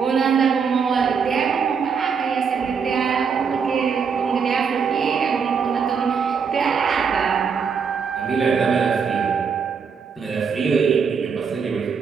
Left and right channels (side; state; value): left; quieter; 6.1 dB